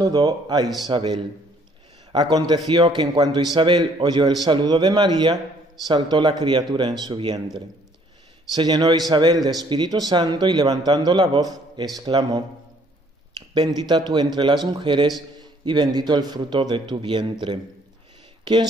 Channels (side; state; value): both; normal; correlation 0.62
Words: a Isabel. Aconteció que en cuanto Isabel oyó el saludo de María, saltó la criatura en su vientre. Se llenó Isabel de Espíritu Santo y levantando la voz, exclamó: «Bendita tú entre las mujeres y bendito el fruto de tu vientre. ¿Quién